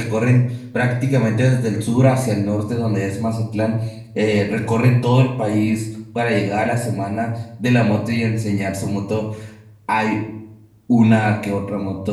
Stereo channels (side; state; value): both; identical; correlation 1.00